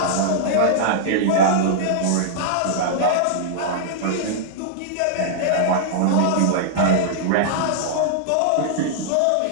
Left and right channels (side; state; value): both; different; correlation -0.01